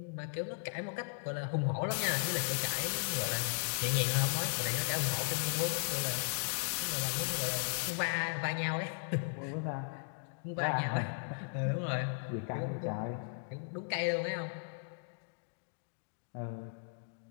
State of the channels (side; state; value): right; silent; digital silence